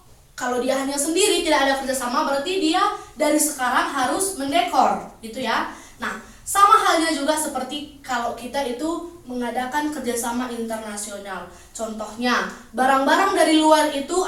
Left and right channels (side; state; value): both; identical; correlation 1.00